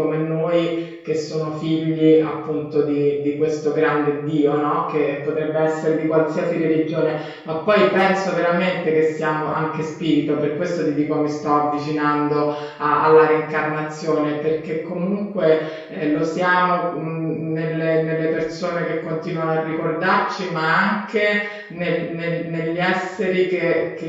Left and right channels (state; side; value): identical; both; correlation 1.00